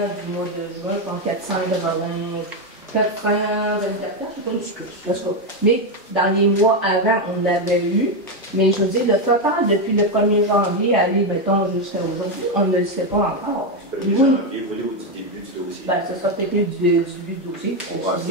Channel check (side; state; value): both; normal; correlation 0.06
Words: mois de juin, comme 424 je sais pas. Mais dans les mois avant, on l'avait eu. Mais je veux dire, le total, depuis le 1er janvier, aller, mettons, jusqu'à aujourd'hui, on ne le sait pas encore. Le 1er janvier, vous voulez au début du dossier? Ben, ce sera peut-être du début du dossier. On va